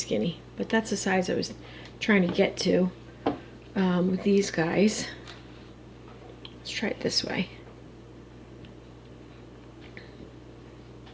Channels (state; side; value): identical; both; correlation 1.00